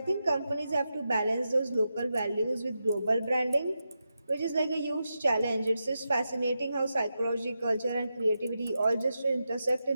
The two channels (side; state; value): both; inverted; correlation -0.88